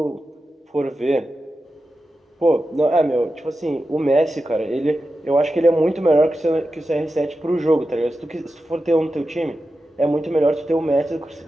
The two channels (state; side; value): normal; both; correlation 0.91